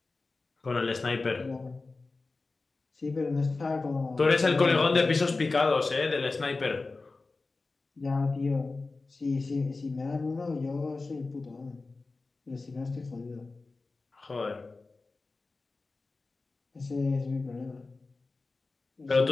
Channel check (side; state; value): right; quieter; 3.7 dB